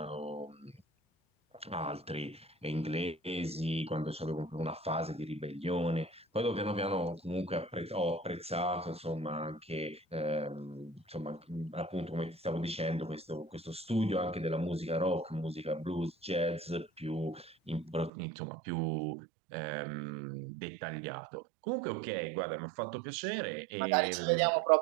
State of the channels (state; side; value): drops out; left; at 18.1 s